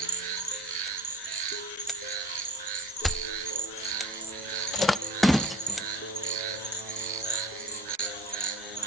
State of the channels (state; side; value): normal; both; correlation 0.43